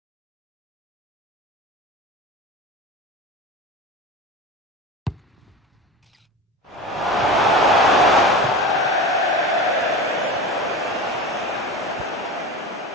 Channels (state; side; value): normal; both; correlation 0.29